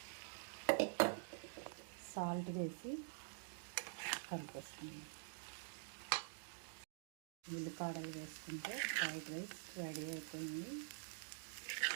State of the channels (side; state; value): left; silent; digital silence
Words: సాల్ట్ వేసి కలిపేస్తున్నాం. ఉల్లిపాయలు వేసుకుంటే ఫ్రైడ్ రైస్ రెడీ అయిపోయింది.